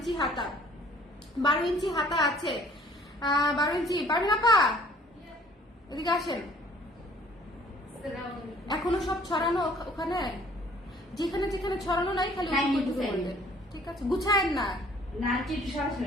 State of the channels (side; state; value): both; normal; correlation 0.55